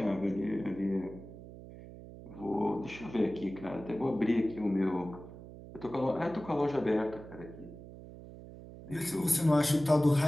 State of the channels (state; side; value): noise; right; hum, 15 dB below the sound